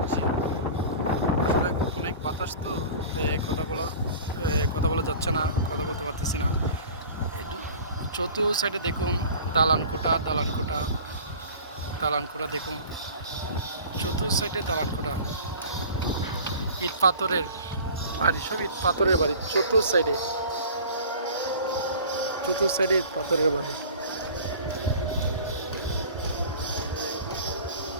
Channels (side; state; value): both; inverted; correlation -0.41